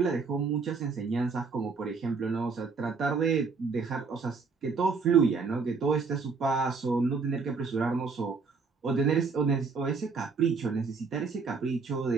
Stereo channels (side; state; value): left; quieter; 4.9 dB